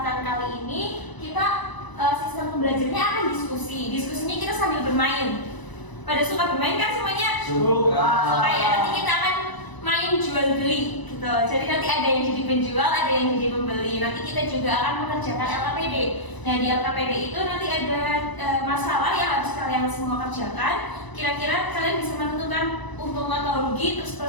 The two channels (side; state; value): right; late; 1.0 ms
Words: kali ini kita sistem pembelajarannya akan diskusi. Diskusinya kita sambil bermain. Pada suka bermain kan semuanya? Suka. Suka ya. Nanti kita akan main jual beli gitu. Jadi nanti ada yang jadi penjual, ada yang jadi pembeli. Nanti kita juga akan mengerjakan LKPD. Nah di LKPD itu nanti ada masalah yang harus kalian semua kerjakan. Kira-kira kalian bisa menentukan untung atau rugi, terus